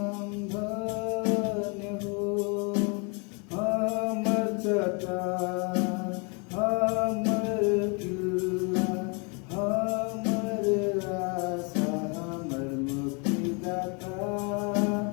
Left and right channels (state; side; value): quieter; right; 33.6 dB